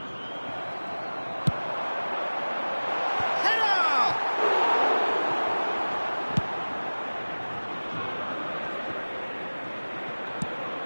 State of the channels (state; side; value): inverted; both; correlation -1.00